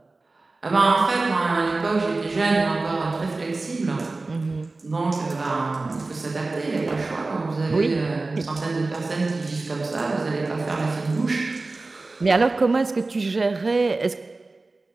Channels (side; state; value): left; quieter; 3.4 dB